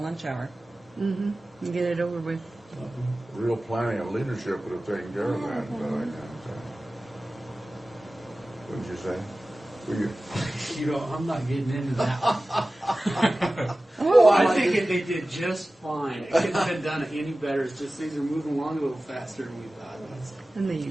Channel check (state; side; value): normal; both; correlation 0.96